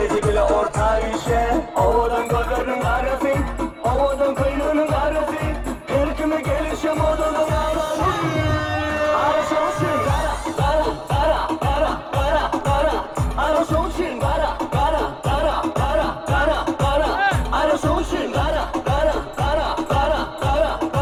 bile orta işe. Ovadan gözlerim karafin, ovadan kıynının karafin. Her kime gelişem odadan ağlarım. Arasonsın kara, kara, kara, kara, kara, kara. Arasonsın kara, kara, kara, kara, kara, kara. Arasonsın kara, kara, kara, kara, kara,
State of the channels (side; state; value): both; identical; correlation 1.00